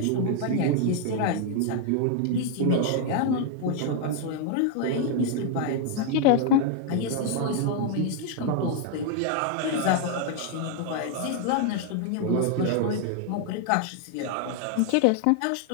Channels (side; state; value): both; different; correlation 0.00